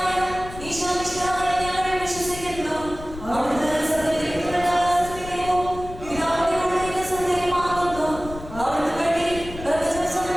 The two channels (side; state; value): left; noise; rumble, 13 dB below the sound